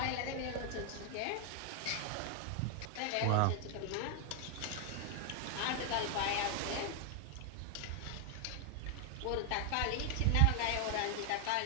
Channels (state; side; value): different; both; correlation 0.00